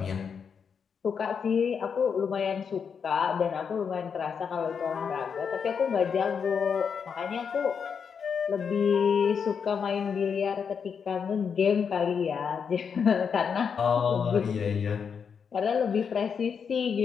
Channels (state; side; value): quieter; right; 6.6 dB